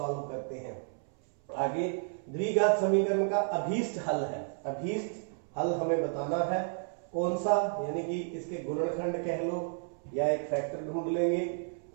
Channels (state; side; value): silent; left; 57 dB below the other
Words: करते हैं। आगे द्विघात समीकरण का अभीष्ट हल है। अभीष्ट हल हमें बताना है कौन सा, यानी कि इसके गुणनखंड कह लो या एक फैक्टर ढूंढ लेंगे।